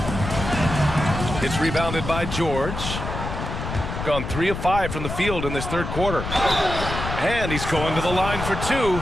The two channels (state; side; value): noise; left; rumble, 6 dB below the sound